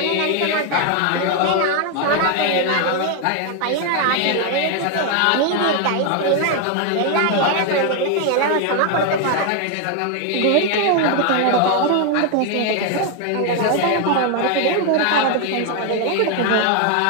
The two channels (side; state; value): both; different; correlation 0.01